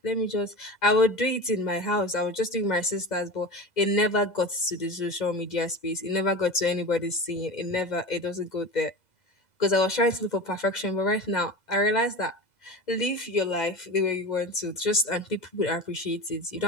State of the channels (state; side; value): late; right; 2.0 ms